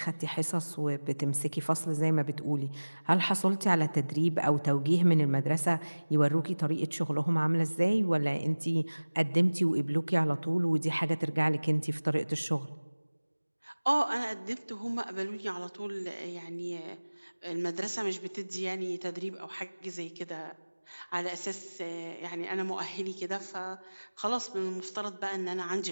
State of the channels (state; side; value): inverted; both; correlation -1.00